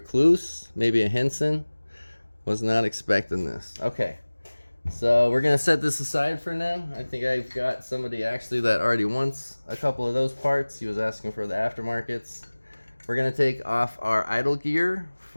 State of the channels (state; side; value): inverted; both; correlation -1.00